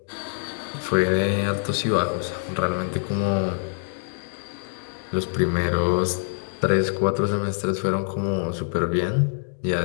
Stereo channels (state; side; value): silent; right; digital silence